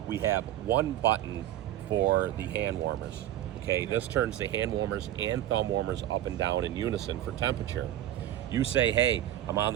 we have one button for the hand warmers. Okay, this turns the hand warmers and thumb warmers up and down in unison for temperature. You say, hey, I'm on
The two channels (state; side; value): quieter; left; 12.6 dB